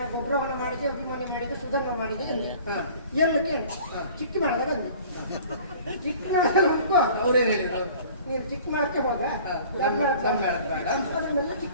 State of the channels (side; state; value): both; inverted; correlation -0.48